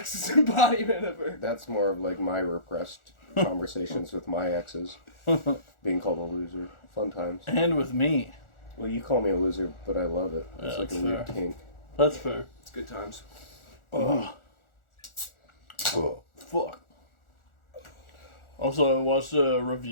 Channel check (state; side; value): late; right; 1.4 ms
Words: embodiment of her. That's more of like my repressed conversations with my exes. Being called a loser. Fun times. And with me. Well, you call me a loser, but I love it. It's Yeah, like a that's weird fair. kink. That's fair. It's good times. Oh. Fuck. Also, I watched a